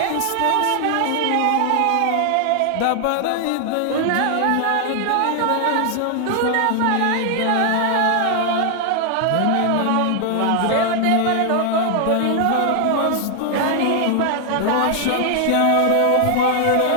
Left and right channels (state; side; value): different; both; correlation 0.00